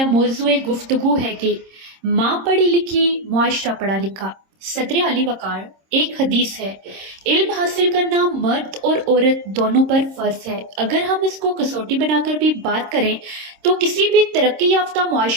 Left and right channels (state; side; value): late; left; 26 ms